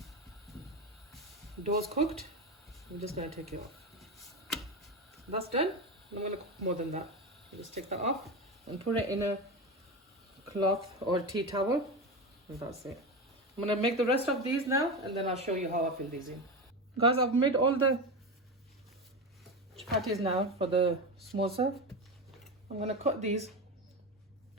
dough's cooked, I'm just going to take it off. That's done. I'm going to cook more than that. Just take that off and put it in a cloth or tea towel. And that's it. I'm going to make the rest of these now, and then I'll show you how I fill these in. Guys, I've made all the chapatis now for the samosa. I'm going to cut these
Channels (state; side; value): normal; both; correlation 0.20